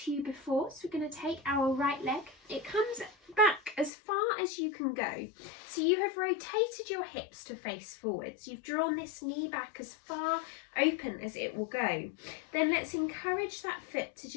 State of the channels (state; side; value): drops out; right; at 3.9 s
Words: you before. So we're going to take our right leg. It comes back as far as you can go. So you have rotated your hips to face forwards. You've drawn this knee back as far open as it will go. Then let's encourage that foot to